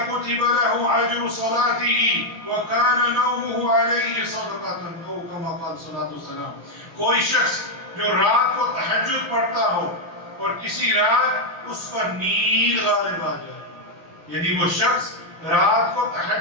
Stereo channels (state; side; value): late; left; 6.6 ms